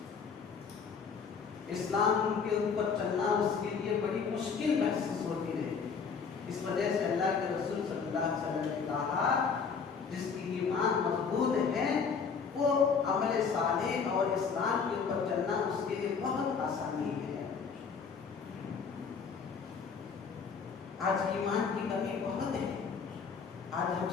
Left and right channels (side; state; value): right; quieter; 5.8 dB